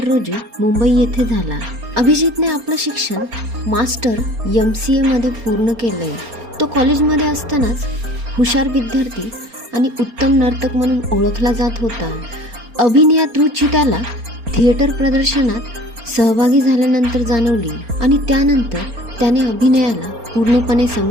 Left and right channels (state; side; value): late; left; 4.3 ms